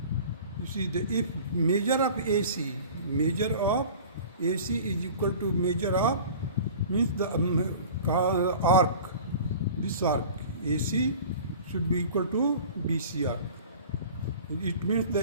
You see, if measure of AC is equal to measure of, means the arc, this arc AC should be equal to BC arc. It means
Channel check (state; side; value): inverted; both; correlation -0.41